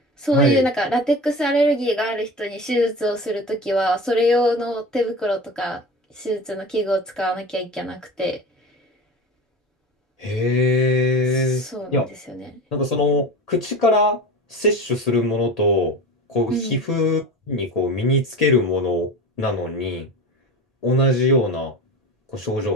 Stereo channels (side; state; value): both; normal; correlation 0.31